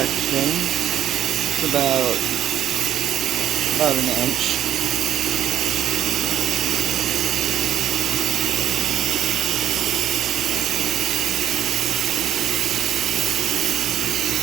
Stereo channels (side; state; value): left; quieter; 11.1 dB